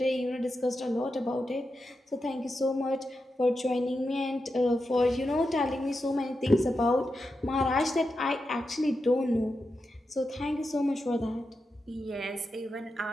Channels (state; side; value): normal; both; correlation 0.88